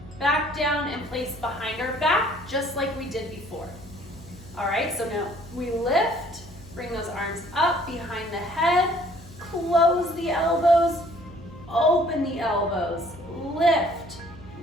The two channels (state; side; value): noise; right; hum, 22 dB below the sound